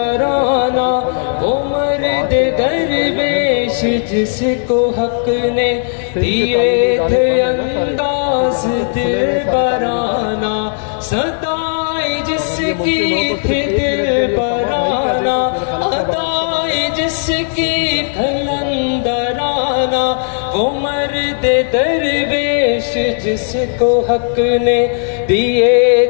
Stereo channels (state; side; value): silent; right; digital silence